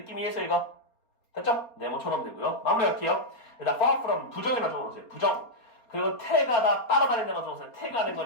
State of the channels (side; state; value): right; late; 4.3 ms